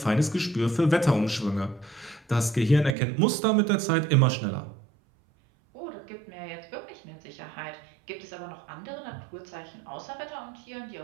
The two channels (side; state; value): left; drops out; at 3.0 s